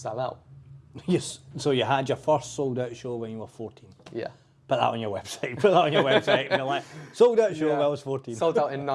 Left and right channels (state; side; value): identical; both; correlation 1.00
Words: out. Yes. So you had your first sold-out show when you were 14. Yeah. Put that on your website. Put that on your website. And you're like, sold-out show when I was 14. Sold out in